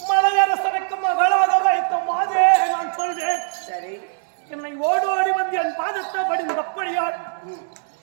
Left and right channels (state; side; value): silent; left; digital silence